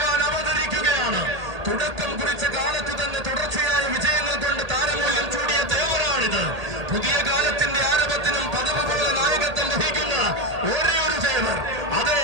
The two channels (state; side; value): late; left; 1.8 ms